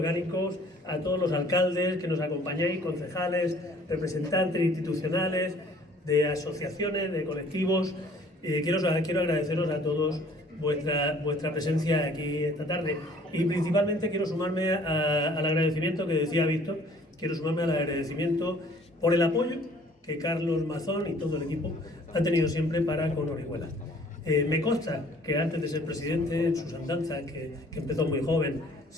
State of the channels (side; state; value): both; normal; correlation 0.56